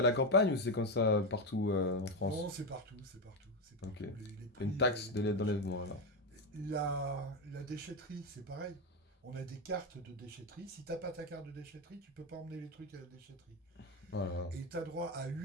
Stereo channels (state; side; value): normal; both; correlation 0.11